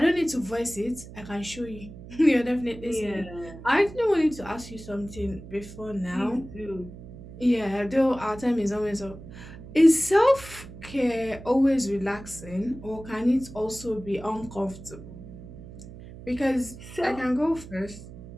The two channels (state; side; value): noise; right; hum, 15 dB below the sound